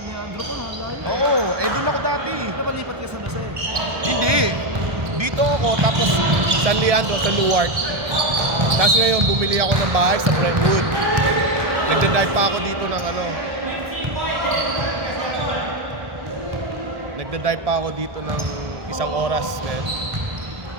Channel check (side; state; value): left; late; 1.2 ms